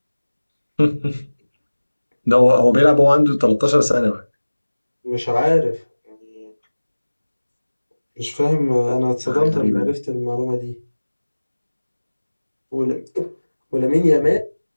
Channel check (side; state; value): both; inverted; correlation -1.00